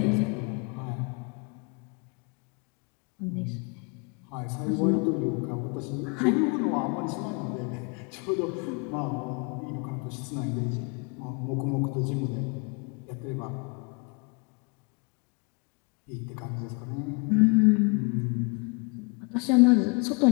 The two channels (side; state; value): right; quieter; 32.5 dB